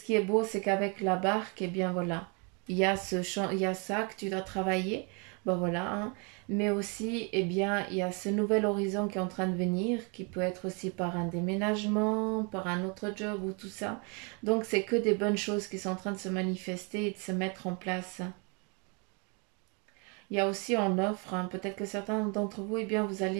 qui est beau, c'est qu'avec la barque, eh bien voilà, il y a ça que tu dois travailler, ben voilà, hein. Mais aussi, eh bien, il y a ce nouvel horizon qui est en train de venir, qui peut être aussi par un déménagement, par un autre job ou tout ça. Donc, c'est que des bonnes choses qui sont en train de se manifester et de se mettre en place. Il y a aussi en offre, hein, peut-être que certains d'entre vous, eh bien, vous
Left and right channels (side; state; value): left; quieter; 33.9 dB